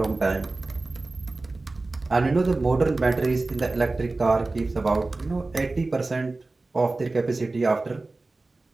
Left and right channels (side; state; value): left; quieter; 3.3 dB